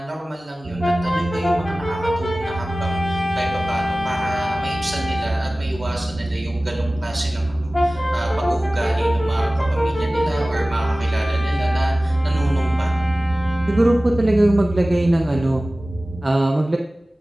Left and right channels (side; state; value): both; normal; correlation 0.97